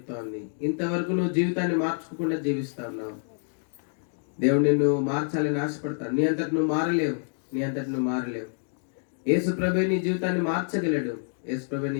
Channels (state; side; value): silent; right; 60 dB below the other